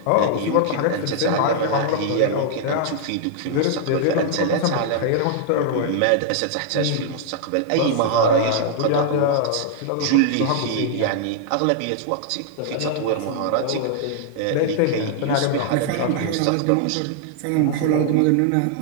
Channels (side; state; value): both; different; correlation -0.01